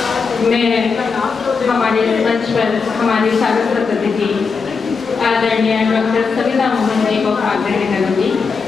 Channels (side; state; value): right; quieter; 5.1 dB